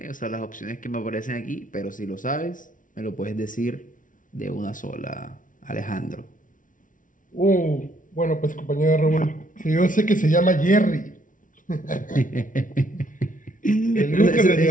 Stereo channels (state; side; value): late; right; 0.38 ms